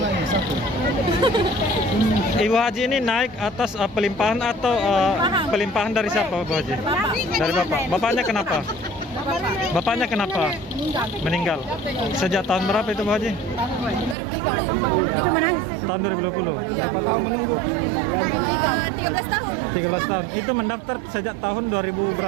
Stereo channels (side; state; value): left; drops out; at 14.2 s